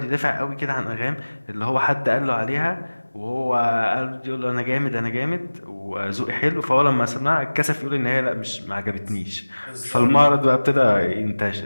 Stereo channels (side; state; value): both; inverted; correlation -1.00